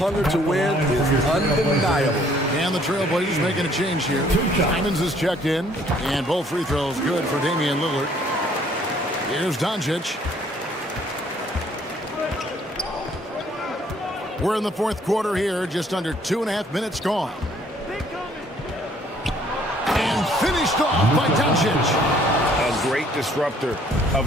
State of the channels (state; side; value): normal; both; correlation 0.61